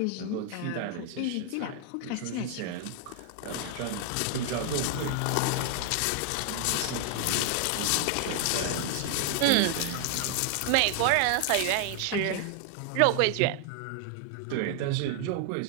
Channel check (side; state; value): both; different; correlation 0.00